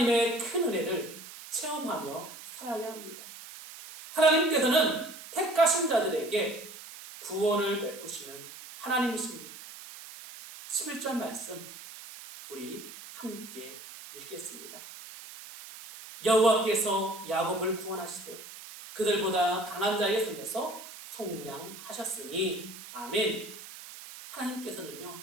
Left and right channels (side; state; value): right; noise; hiss, 14 dB below the sound